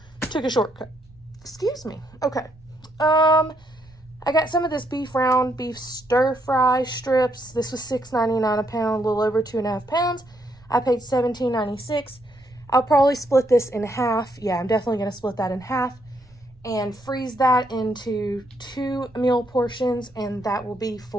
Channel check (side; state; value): right; noise; rumble, 27 dB below the sound